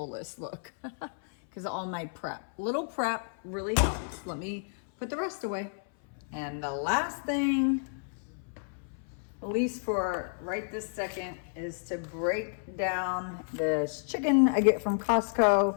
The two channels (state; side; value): silent; right; 56 dB below the other